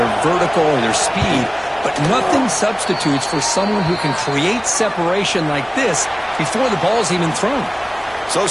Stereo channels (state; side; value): identical; both; correlation 1.00